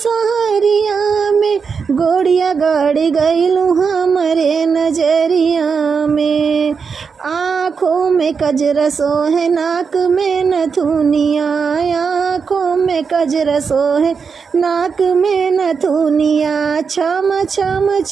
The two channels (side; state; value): left; quieter; 5.7 dB